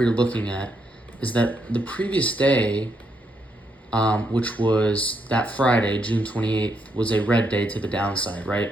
were looking at is that the previous day, which was that Friday, June 28th, was a red day to the downside,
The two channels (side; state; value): both; normal; correlation 0.78